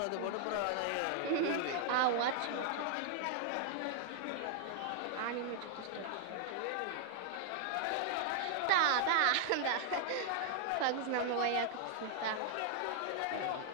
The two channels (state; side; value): different; both; correlation -0.01